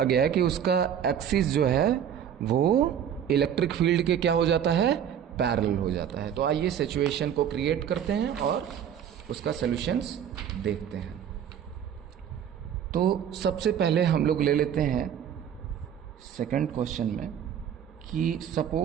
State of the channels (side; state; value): left; quieter; 9.1 dB